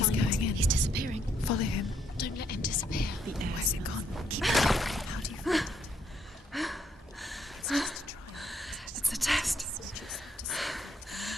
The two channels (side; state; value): both; normal; correlation 0.73